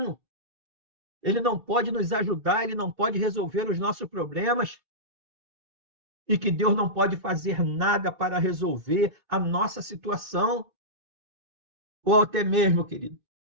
ele não pode nos ajudar, ele não pode resolver os nossos problemas, e que Deus não pode fazer nada para resolver a nossa situação. ou até mesmo, querido,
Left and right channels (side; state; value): left; late; 2.6 ms